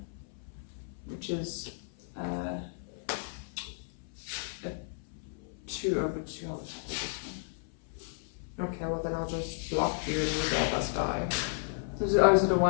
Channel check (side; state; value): right; silent; 56 dB below the other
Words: which is 2 over 2. I'll attack with this one. Okay, well then I'll just block you and we'll both of us die. Is it a